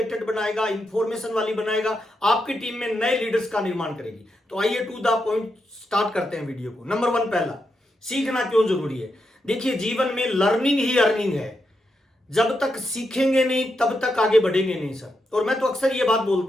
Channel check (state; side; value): normal; both; correlation 0.84